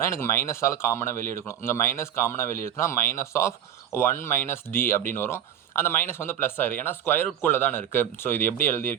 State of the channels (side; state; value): left; quieter; 10.0 dB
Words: எனக்கு மைனஸால் காமனாக வெளியே எடுக்கணும். இங்கே மைனஸ் காமனாக வெளியே எடுத்தோன்னா -1 - d அப்படின்னு வரும். அந்த மைனஸ் வந்து ப்ளஸ் ஆயிரும், ஏன்னா ஸ்கொயர் ரூட்குள்ளே தானே இருக்குது. ஸோ இது எப்படி